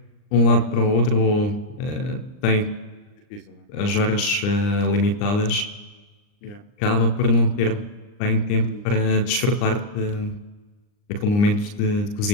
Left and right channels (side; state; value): right; late; 39 ms